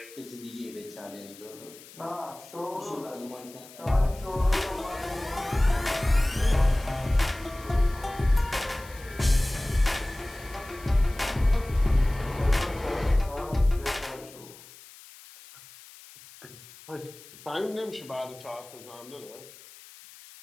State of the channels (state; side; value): noise; left; hiss, 20 dB below the sound